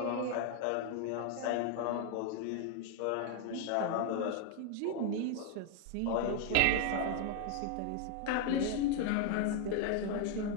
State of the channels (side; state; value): both; different; correlation 0.00